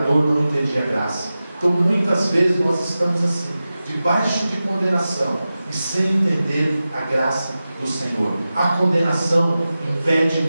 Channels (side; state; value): both; inverted; correlation -0.94